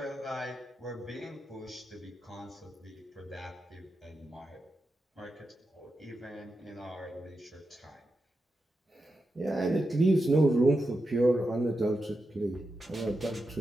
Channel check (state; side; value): normal; both; correlation 0.89